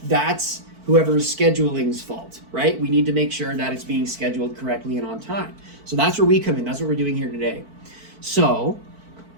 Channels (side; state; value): left; late; 4.5 ms